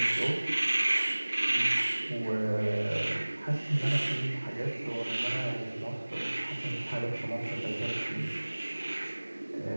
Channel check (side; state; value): both; inverted; correlation -1.00